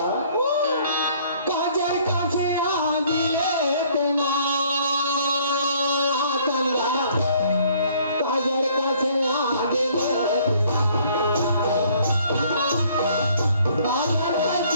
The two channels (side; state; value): both; inverted; correlation -0.60